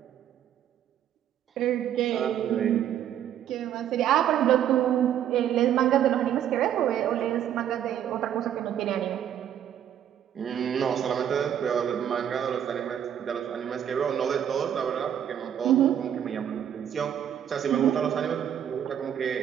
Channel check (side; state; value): left; quieter; 10.0 dB